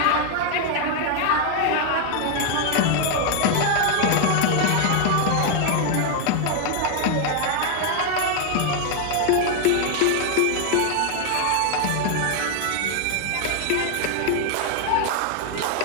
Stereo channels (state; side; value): different; both; correlation 0.00